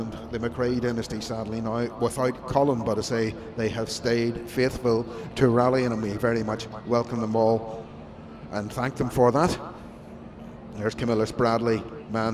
the McRae dynasty sadly now without Colin, but I say they have stayed faithful to rallying, and we very much welcome them all and thank them for that. There's Camillus Bradley,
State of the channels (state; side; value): identical; both; correlation 1.00